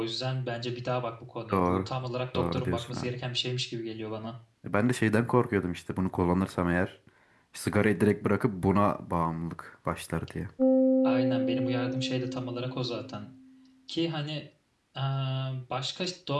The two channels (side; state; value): both; identical; correlation 1.00